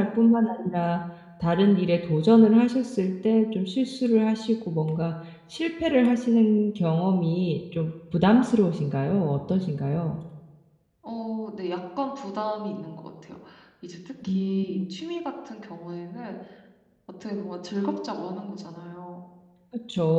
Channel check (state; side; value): identical; both; correlation 1.00